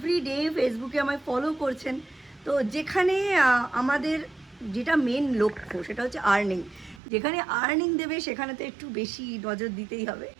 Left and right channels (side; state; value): left; drops out; at 7.0 s